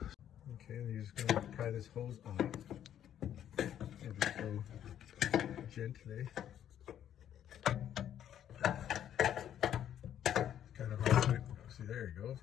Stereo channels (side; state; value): right; quieter; 10.4 dB